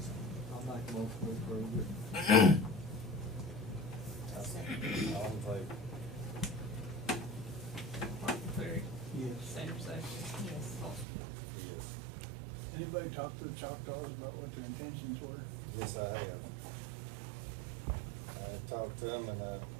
I'll make a motion to approve it. All in favor? Martin Perry. Yes. Sammy Guthrie. Yes. Paul Story. Yes. Anybody talk to the Choctaws about what their intentions were? Yes, I have. I talked to them and,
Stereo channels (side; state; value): left; drops out; at 11.1 s